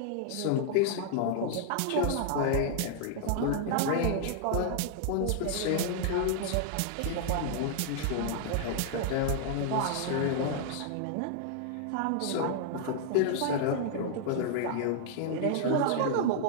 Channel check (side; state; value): both; different; correlation -0.01